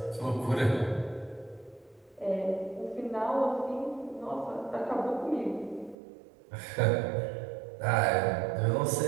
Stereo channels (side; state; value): left; drops out; at 6.0 s